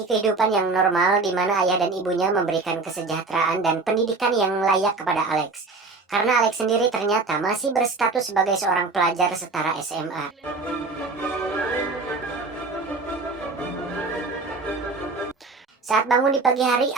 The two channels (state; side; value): quieter; left; 3.8 dB